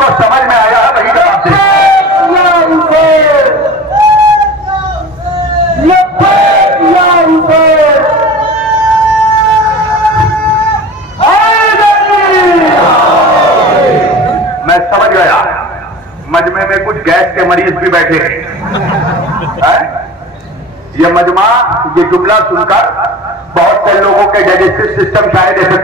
समझ में आया है वही जवाब दे। मैं समझ गया, मजमे में कुछ गैस के मरीज भी बैठे हैं। ये मजमा, ये जुमला सुनकर बहुत से लोगों के डाइजेस्टिव सिस्टम शायद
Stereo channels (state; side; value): normal; both; correlation 0.37